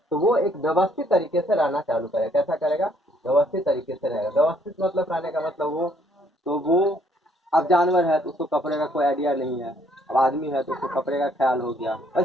तो वो एक व्यवस्थित तरीके से रहना चालू करेगा। कैसा करेगा, व्यवस्थित तरीके से रहेगा। व्यवस्थित मतलब रहने का मतलब वो, तो वो अब जानवर है तो उसको कपड़े का कोई आइडिया नहीं है, अब आदमी है तो उसको कपड़े का ख्याल हो गया।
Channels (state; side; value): normal; both; correlation 0.66